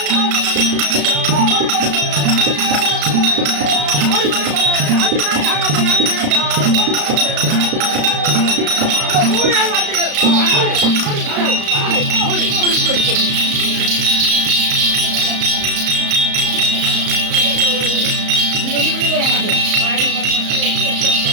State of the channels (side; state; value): left; late; 34 ms